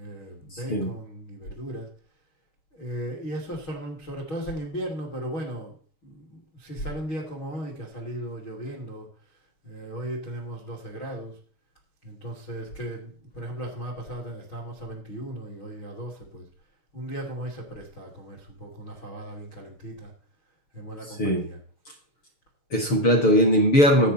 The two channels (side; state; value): right; late; 6.8 ms